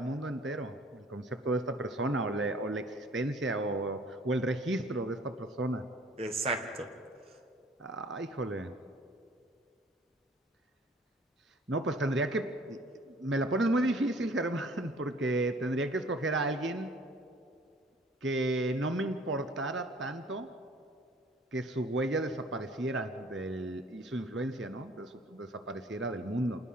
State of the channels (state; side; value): normal; both; correlation 0.53